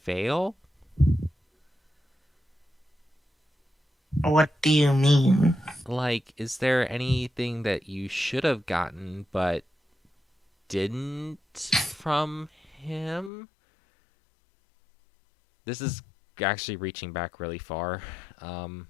fail? What do you mean? Like, is there anything that you should have gotten but didn't from him? This is actually reaching back really far. Um,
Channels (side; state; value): right; drops out; at 13.3 s